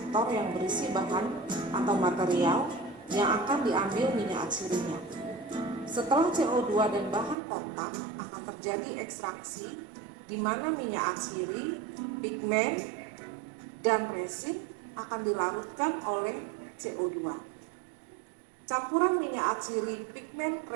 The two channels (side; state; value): left; drops out; at 7.4 s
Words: yang berisi bahan atau material yang akan diambil minyak atsirinya. Setelah CO2 dan bahan kontak akan terjadi ekstraksi di mana minyak atsiri, pigmen, dan resin akan dilarutkan oleh CO2. Campuran minyak atsiri, pigmen,